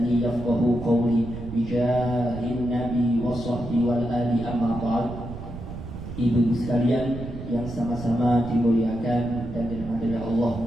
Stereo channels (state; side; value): noise; right; rumble, 10 dB below the sound